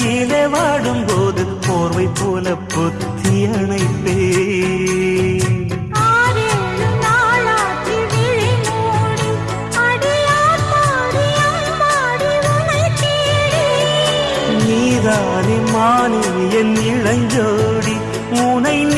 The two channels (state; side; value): identical; both; correlation 1.00